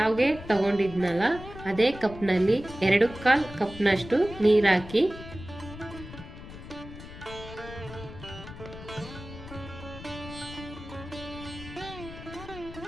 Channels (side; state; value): left; noise; rumble, 14 dB below the sound